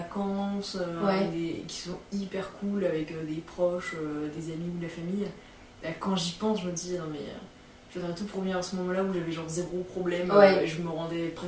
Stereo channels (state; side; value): identical; both; correlation 1.00